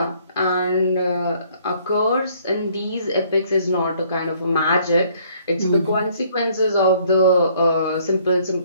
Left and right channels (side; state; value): both; inverted; correlation -0.62